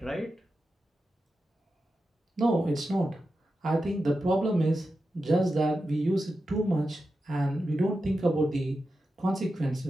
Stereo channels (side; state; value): both; normal; correlation 0.90